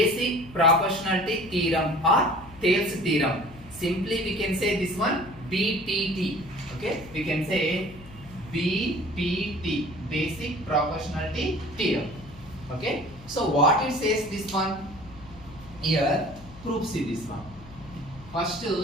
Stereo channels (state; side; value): noise; left; hum, 19 dB below the sound